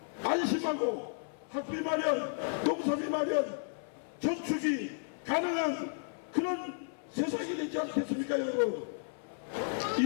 안심하고 학비 마련, 농사비 마련, 저축이 가능한 그런 세상이 되지 않겠습니까, 여러분?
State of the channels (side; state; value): right; silent; 55 dB below the other